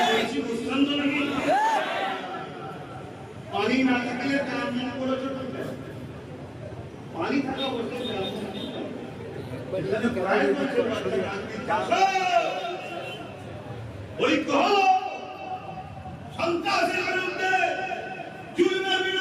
বুঝছেন তো নাকি? পানি না থাকলে কাম করে চলবে, পানি থাকা অবস্থায় ঐক্য সন্ত্রাসের বিরুদ্ধে, জুলুমের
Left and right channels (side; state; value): both; identical; correlation 1.00